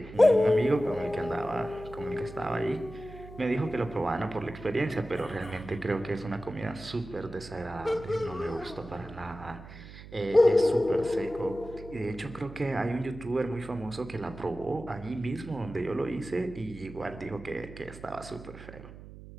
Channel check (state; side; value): noise; right; hum, 15 dB below the sound